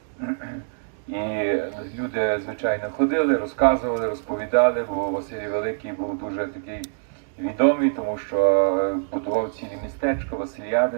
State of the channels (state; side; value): silent; left; digital silence